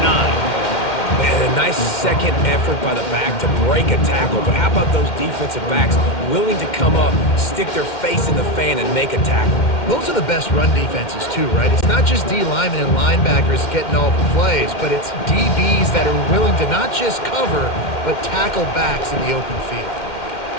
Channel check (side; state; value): right; late; 2.1 ms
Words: 9. Man, a nice second effort by the back to break a tackle. But how about those defensive backs willing to come up, stick their face in the fan, and make a tackle? Those are the best run defenses, too, right? It's not just D linemen and linebackers getting all the plays, but it's DBs that are willing to not just cover, but tackle backs in the open field.